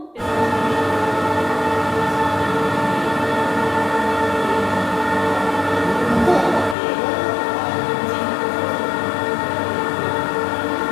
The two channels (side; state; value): right; drops out; at 6.8 s